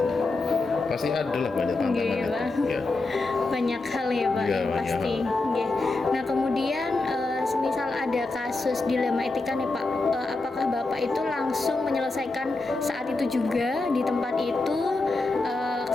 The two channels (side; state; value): right; quieter; 3.3 dB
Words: Pasti ada lah banyak tantangan itu. Ya. Banyak hal ya Pak, Ya, yang pasti. Nah kemudian semisal ada kasus dilema etika nih Pak, apakah Bapak itu langsung menyelesaikan saat itu juga di tempat itu?